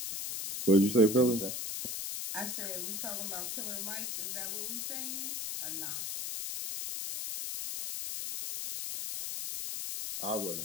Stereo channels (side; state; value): left; noise; hiss, 4 dB below the sound